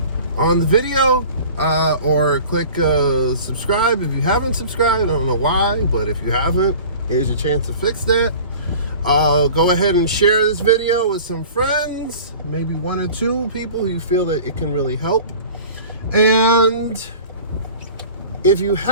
on the video or click subscribe if you haven't subscribed. I don't know why, but if you haven't, here's your chance to fix that. Go ahead and share this video with some friends, maybe one or two people who you feel that it can really help. And if you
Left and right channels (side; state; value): both; inverted; correlation -0.42